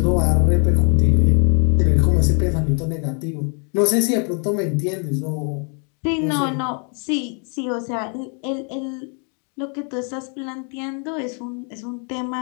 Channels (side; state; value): right; quieter; 39.7 dB